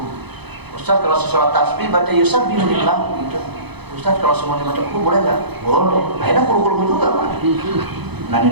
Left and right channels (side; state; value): left; late; 0.98 ms